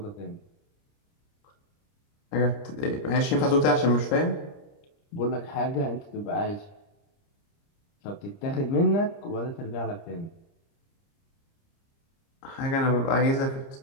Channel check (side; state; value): right; late; 30 ms